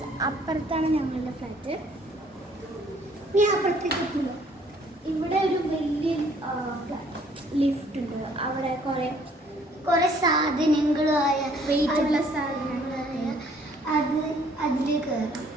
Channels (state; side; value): normal; both; correlation 0.61